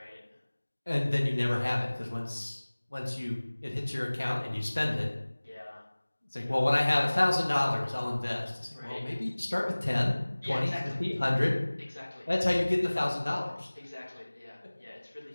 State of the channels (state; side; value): inverted; both; correlation -1.00